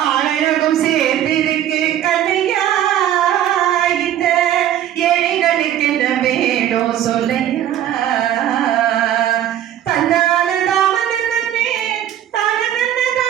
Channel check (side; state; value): left; quieter; 11.3 dB